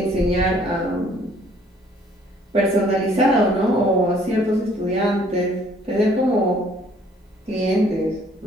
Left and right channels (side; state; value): both; normal; correlation 0.60